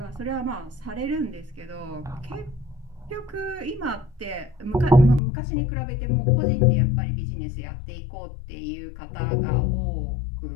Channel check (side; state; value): right; drops out; at 5.2 s